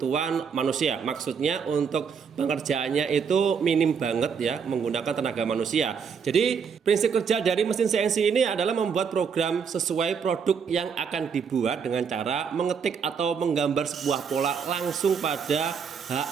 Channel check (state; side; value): quieter; left; 6.4 dB